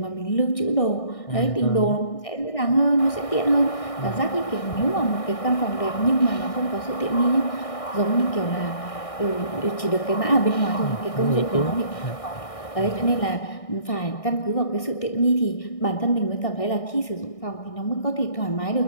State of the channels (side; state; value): right; late; 1.6 ms